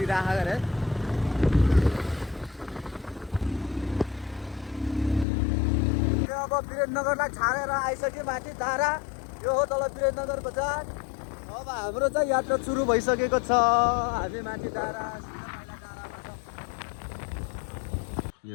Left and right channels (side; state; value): right; drops out; at 5.2 s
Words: अरे अब वीरेन्द्रनगरलाई छाडेर आइसक्यो माथि धारा यो हो तल वीरेन्द्रनगर बजार अब हाम्रो चाहिँ यात्रा सुरु भइसकेको छ हामी माथि धारा